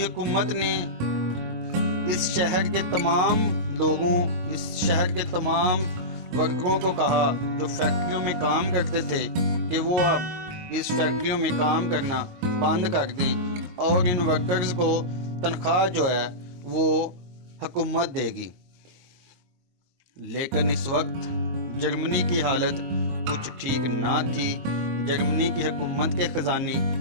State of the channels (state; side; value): late; left; 22 ms